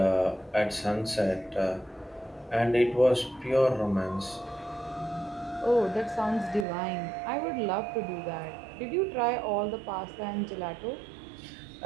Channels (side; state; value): left; drops out; at 6.7 s